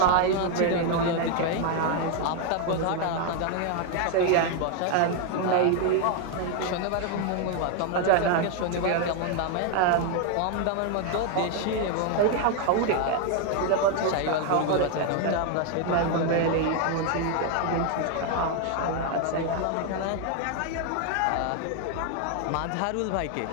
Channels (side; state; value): both; different; correlation 0.01